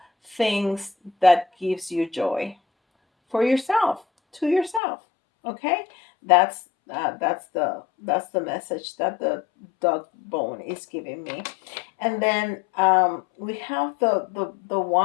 things that gives you joy for yourself, to yourself. Okay, that's that's the message that the dog bone is giving me. And then we have the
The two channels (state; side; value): drops out; right; at 4.8 s